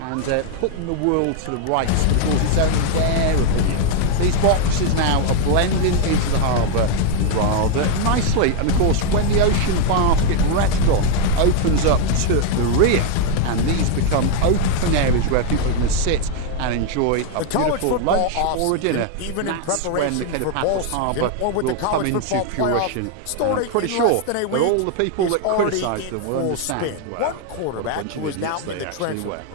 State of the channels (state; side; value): different; both; correlation 0.01